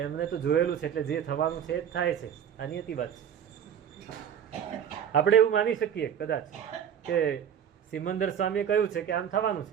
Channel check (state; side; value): quieter; left; 8.8 dB